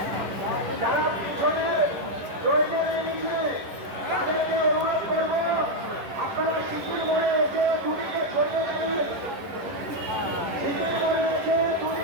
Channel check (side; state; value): left; late; 11 ms